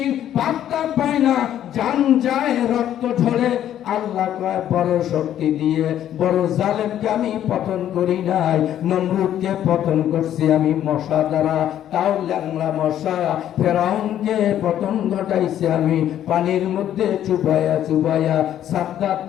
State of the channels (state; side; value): quieter; right; 11.1 dB